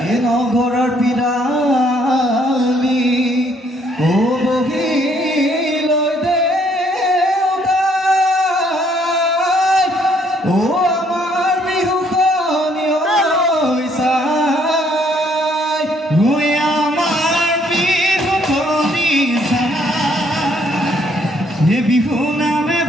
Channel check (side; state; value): both; normal; correlation 0.66